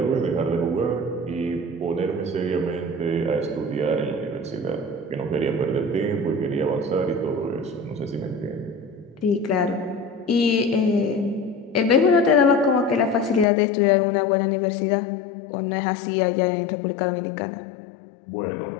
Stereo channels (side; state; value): right; drops out; at 13.5 s